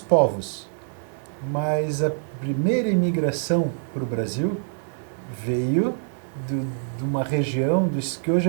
povos, mas a primeira imigração para o Brasil veio de uma região que hoje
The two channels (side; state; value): left; silent; 62 dB below the other